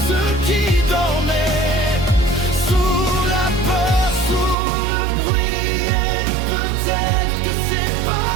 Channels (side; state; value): left; drops out; at 4.5 s